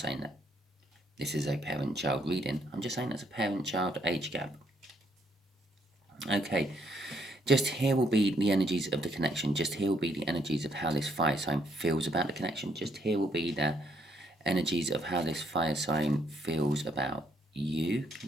that this is a parent-child reading. I'm just saying it's a parent-child age gap. Okay, just here will be the energies of the connection. Just here will be the energies of how this fire sign feels about the connection. Just here will be the energies of how this fire sign feels about you,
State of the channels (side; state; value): both; normal; correlation 0.71